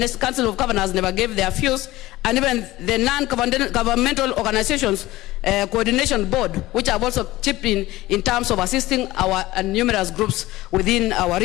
Council of Governors never gave their views, and even the non-governmental organizations coordination board, which have also chipped in terms of assisting our numerous groups within our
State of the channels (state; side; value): quieter; right; 17.8 dB